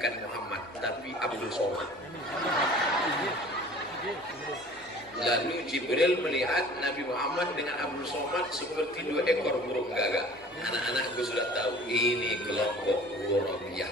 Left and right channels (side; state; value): both; normal; correlation 0.46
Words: Muhammad tapi Abdul Somad. Lalu Jibril melihat Nabi Muhammad dengan Abdul Somad seperti dua ekor burung gagak. Anak-anakku sudah tahu ini kelompok Ghurabiyah,